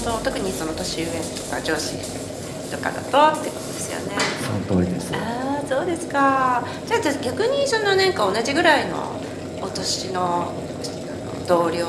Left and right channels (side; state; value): both; identical; correlation 1.00